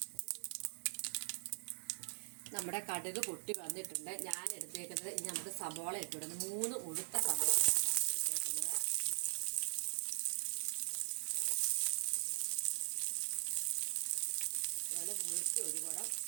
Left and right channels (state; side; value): silent; left; digital silence